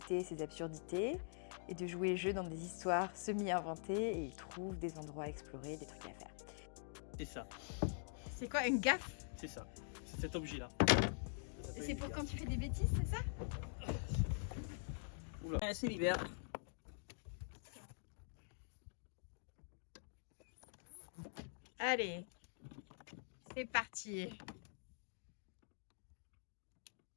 ses absurdités et de jouer le jeu dans des histoires semi-inventées et il trouve des endroits à explorer, des trucs à faire. C'est ça. C'est quoi, une gaffe? C'est ça. C'est cet objet-là. Et c'est pour quand tu fais des bêtises, c'est ça? Oula. C'est l'hiver. Allez, c'est parti.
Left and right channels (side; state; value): right; silent; digital silence